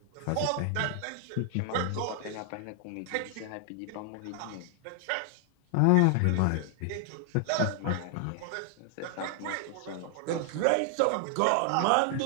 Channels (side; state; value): both; different; correlation 0.00